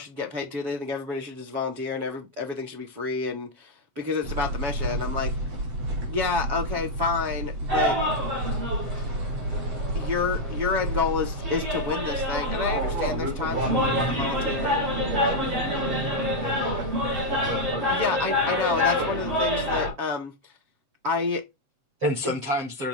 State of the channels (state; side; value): late; left; 7.3 ms